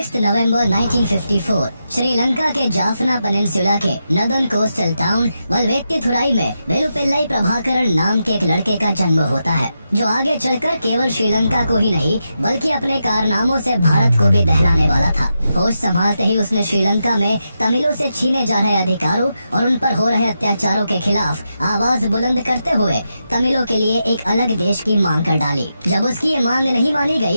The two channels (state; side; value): inverted; both; correlation -0.86